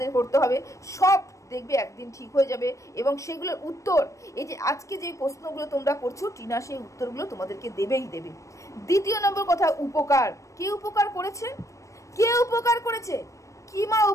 করতে হবে, সব দেখবে একদিন ঠিক হয়ে যাবে। এবং সেগুলোর উত্তর, এই যে আজকে যে প্রশ্নগুলো তোমরা করছো, টিনা সেই উত্তরগুলো তোমাদেরকে দেবেই দেবে। দ্বিতীয় নম্বর কথা, উপকার। কে উপকার করেছে? কে উপকার করেছে? কিমা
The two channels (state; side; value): late; right; 0.15 ms